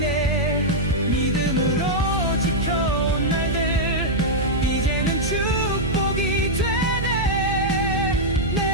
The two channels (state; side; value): noise; right; hum, 4 dB below the sound